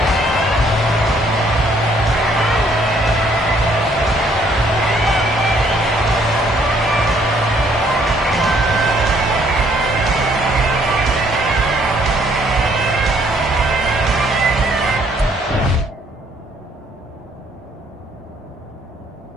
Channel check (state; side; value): normal; both; correlation 0.65